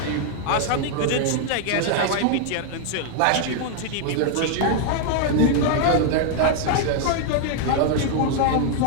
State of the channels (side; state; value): both; different; correlation 0.00